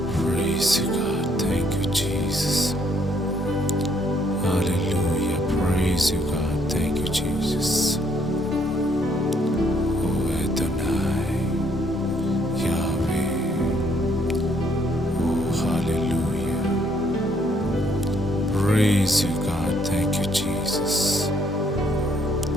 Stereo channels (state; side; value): normal; both; correlation 0.68